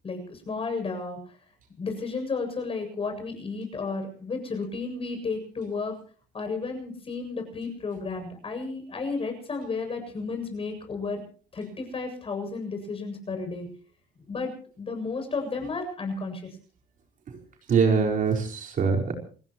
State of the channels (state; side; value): normal; both; correlation 0.56